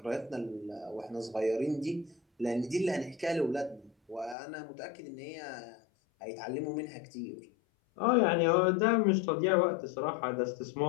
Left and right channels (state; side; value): drops out; right; at 4.4 s